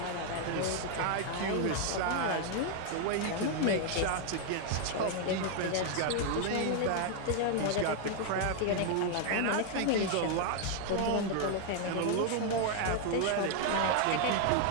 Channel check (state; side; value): different; both; correlation 0.00